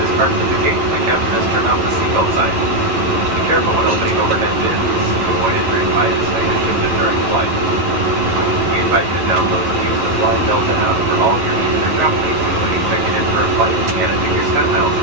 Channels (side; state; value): left; late; 11 ms